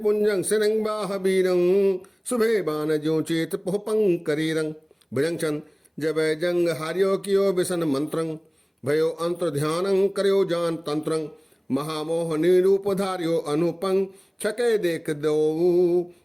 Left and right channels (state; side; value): identical; both; correlation 1.00